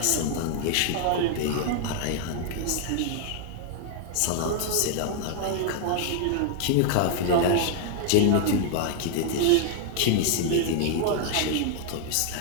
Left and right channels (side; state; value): both; different; correlation 0.00